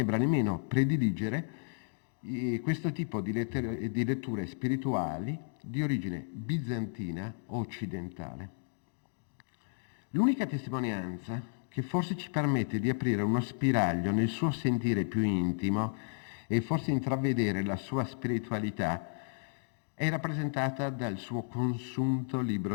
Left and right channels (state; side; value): silent; right; digital silence